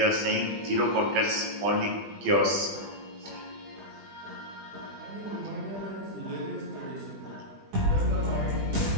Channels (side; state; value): left; late; 20 ms